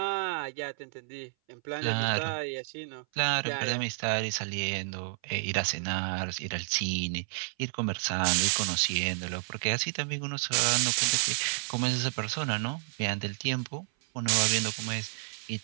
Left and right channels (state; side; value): silent; left; 57 dB below the other